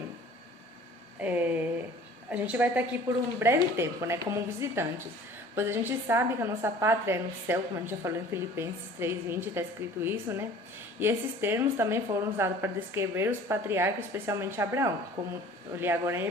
a gente vai estar aqui por um breve tempo, né? Como visitantes. Pois a gente sabe que a nossa pátria é no céu, como a gente já falou em Filipenses 3:20, está escrito isso, né? E esses termos também foram usados para descrever os patriarcas, especialmente Abraão, como eu li agora em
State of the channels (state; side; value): normal; both; correlation 0.47